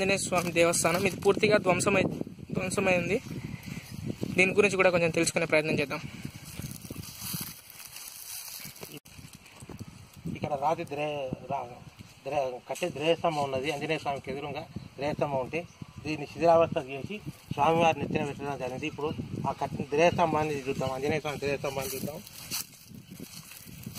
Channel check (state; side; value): identical; both; correlation 1.00